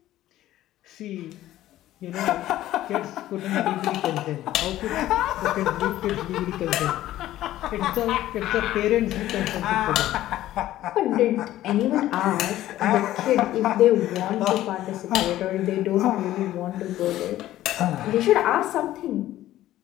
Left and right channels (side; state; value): right; quieter; 14.1 dB